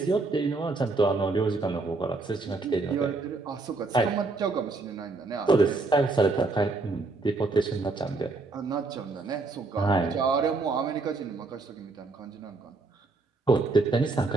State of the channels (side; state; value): left; quieter; 3.6 dB